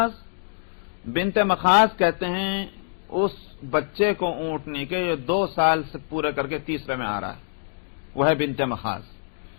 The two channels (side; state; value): right; silent; digital silence